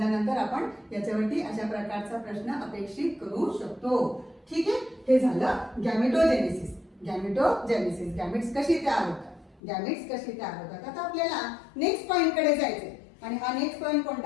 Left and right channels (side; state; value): right; drops out; at 9.6 s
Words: आपण याच्यावरती अशा प्रकारचा प्रश्न अपेक्षित करू शकतो. ठीक आहे. हे झालं गॅमेटोजेनेसिस. गॅमेटोजेनेसिस गॅमेट्स कशी तयार होतात, गॅमेट्स कशी तयार होतात. आता आपल्याला नेक्स्ट पॉइंट कडे जायचंय आणि हा नेक्स्ट पॉइंट